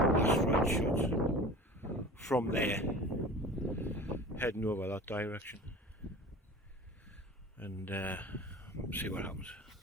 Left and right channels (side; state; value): both; normal; correlation 0.39